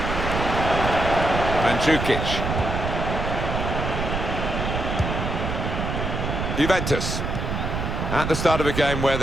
Mandzukic. Juventus at the start of a game where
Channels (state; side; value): noise; right; rumble, 3 dB below the sound